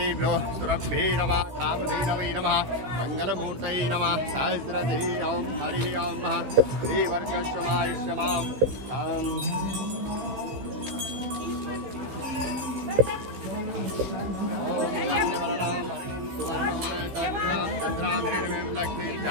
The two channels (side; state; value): left; late; 15 ms